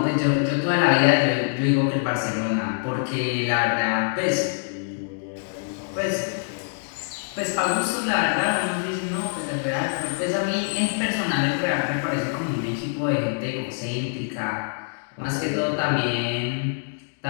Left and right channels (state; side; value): silent; right; digital silence